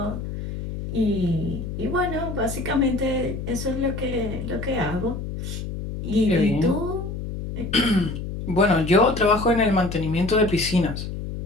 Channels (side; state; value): left; noise; hum, 6 dB below the sound